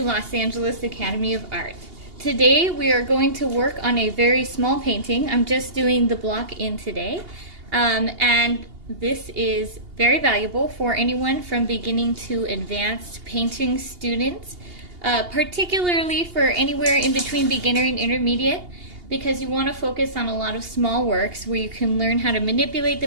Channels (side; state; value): left; late; 2.8 ms